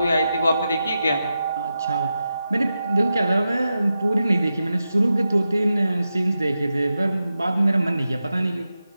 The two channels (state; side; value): inverted; both; correlation -0.90